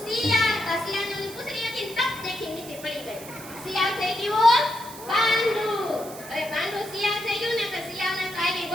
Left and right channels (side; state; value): right; noise; hiss, 15 dB below the sound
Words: શિયાળ. શિયાળની પૂંછડી હતી ને ટપ દેખી નીચે પડી ગઈ. શિયાળ થઈ ગયું પાંડુ. હવે પાંડુ શિયાળ થઈ ગયું ને તો શિયાળને તો આવી